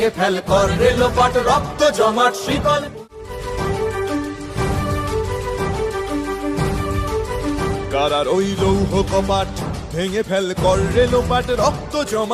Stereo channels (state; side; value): identical; both; correlation 1.00